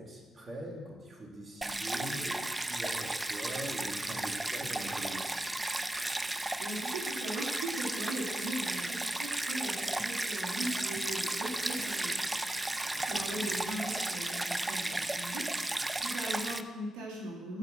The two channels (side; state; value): both; normal; correlation 0.91